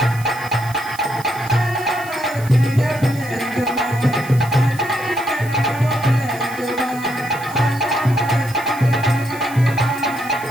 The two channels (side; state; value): right; noise; hiss, 17 dB below the sound